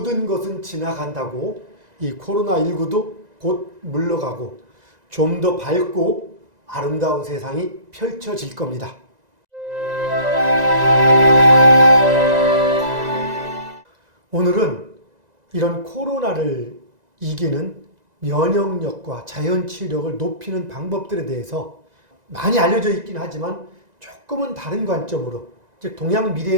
것은 지나간다고 이 코로나19도 곧 물러가고 좀 더 밝고 아름다운 세상이 펼쳐질 겁니다. 오늘은 이런 코로나를 이기는 면역력과 자연치유력을 높이는 방법들에 대해서 많이 알려져 있긴 하지만 조금은 다른 관점으로, 즉 동양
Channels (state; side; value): late; left; 2.0 ms